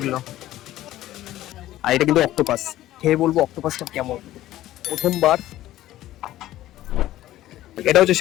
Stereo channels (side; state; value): right; quieter; 14.5 dB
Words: আর এটা কিন্তু অক্টোপাস, খেয়ে বলবো অক্টোপাসটা কেমন। প্রথমবার। এটা হচ্ছে